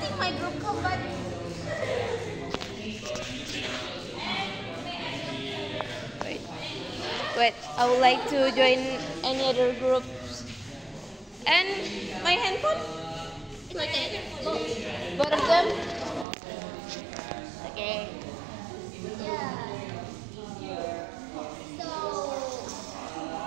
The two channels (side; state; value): left; drops out; at 16.2 s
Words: my group come back. Wait, I would like to join any other groups. And my handphone? Both of them? Okay. Yeah. So,